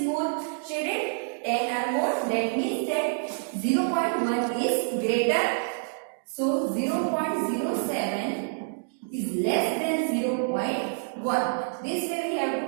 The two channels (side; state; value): left; silent; digital silence